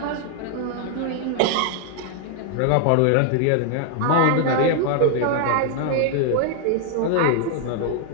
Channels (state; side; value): different; both; correlation 0.00